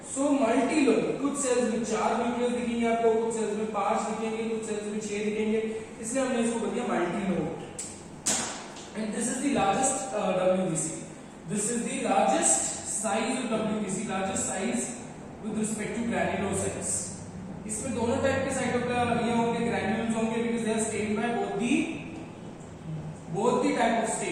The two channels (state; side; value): identical; both; correlation 1.00